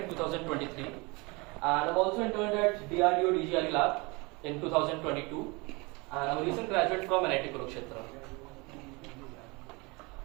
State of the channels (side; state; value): left; quieter; 26.8 dB